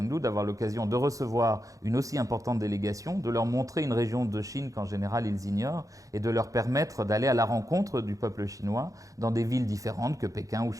d'avoir l'occasion de recevoir une aussi importante délégation, de leur montrer une région de Chine qu'en général ils ignorent et de leur permettre d'aller à la rencontre du peuple chinois dans des villes différentes que Pékin ou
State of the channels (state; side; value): late; left; 0.16 ms